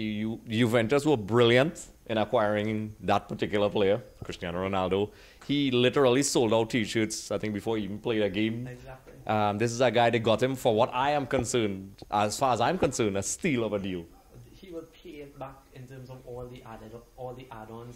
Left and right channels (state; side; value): identical; both; correlation 1.00